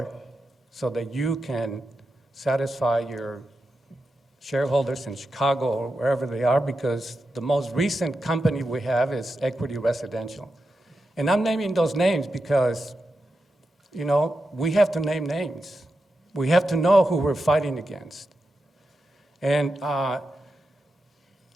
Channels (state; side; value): normal; both; correlation 0.88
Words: so that you can satisfy your shareholders in Chicago or wherever they are, because the most recent company we have is Equity Residential. And I'm naming those names because, we have to name names. We have to know who we're fighting against. And